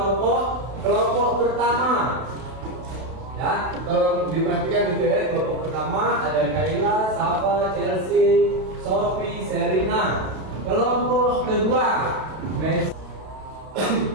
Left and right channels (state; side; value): late; left; 32 ms